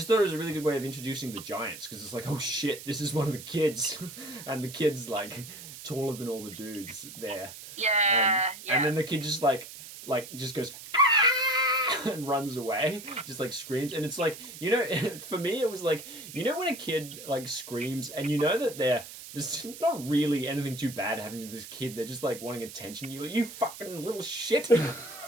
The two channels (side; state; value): right; noise; hiss, 13 dB below the sound